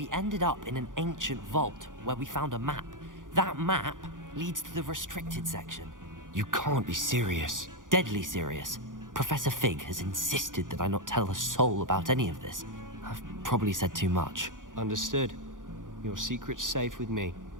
ended up in an ancient vault where we found a map. That map leads to the restricted section. You can't be serious. Deadly serious. Professor Fig has insisted that I not tell a soul about any of this. I've probably said too much. Understood. Your secret's safe with me.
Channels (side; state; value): left; late; 0.88 ms